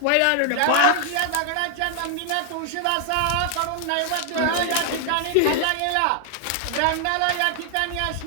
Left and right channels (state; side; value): different; both; correlation 0.00